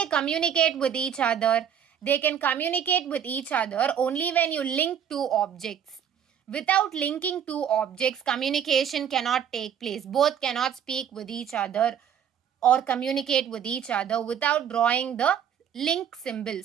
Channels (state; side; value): quieter; left; 8.7 dB